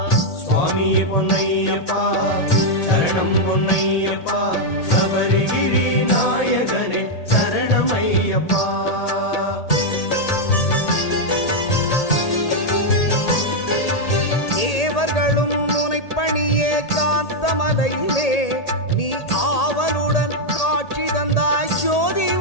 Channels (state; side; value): late; right; 1.8 ms